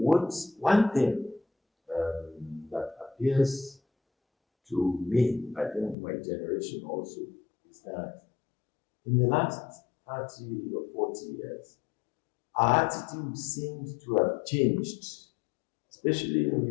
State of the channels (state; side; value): drops out; right; at 6.0 s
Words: one thing appears to me, I think my generation also, is that in the last 30 or 40 years, our attitude seems to have changed, especially in